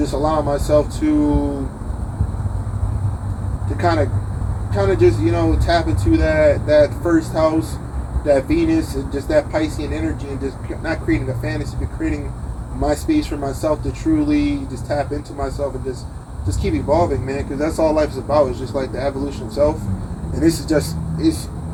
allowing myself to kind of just, you know, tap into that first house, that Venus, and just that Piscean energy, and just not creating a fantasy, but creating my space for myself to truly just tap into myself and just keep evolving, man. Because that's all life is about. Is just like the evolution of self. And this is just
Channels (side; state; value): both; identical; correlation 1.00